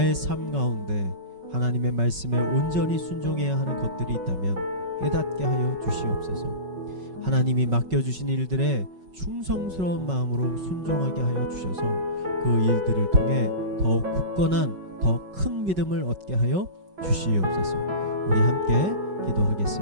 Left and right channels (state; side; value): late; left; 5.3 ms